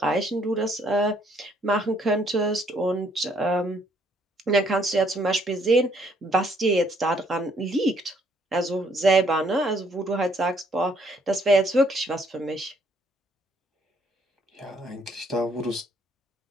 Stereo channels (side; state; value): both; normal; correlation 0.66